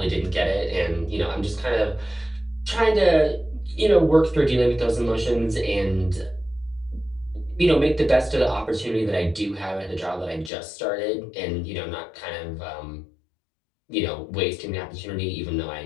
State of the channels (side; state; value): right; drops out; at 10.5 s